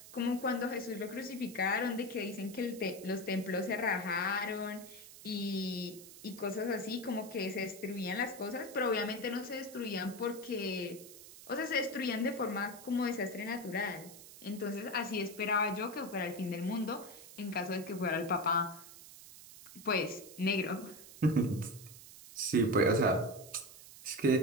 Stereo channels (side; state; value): right; noise; hiss, 16 dB below the sound